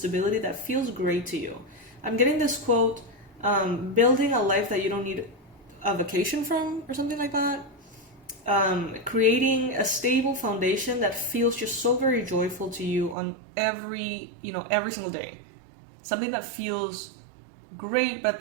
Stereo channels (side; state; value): left; drops out; at 13.2 s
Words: that feels great to you. I'm getting this quote, building a life that you don't need a vacation from or something like that. Creating a stable foundation that feels just so very joyful to you on every single day. Something that feels great, but at